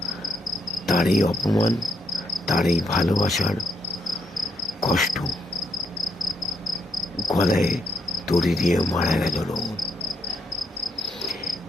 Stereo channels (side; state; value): both; normal; correlation 0.78